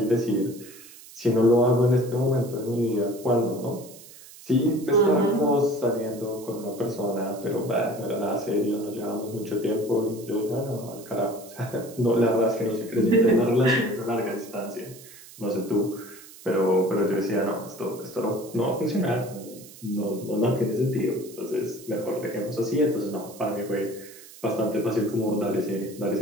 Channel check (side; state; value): right; noise; hiss, 19 dB below the sound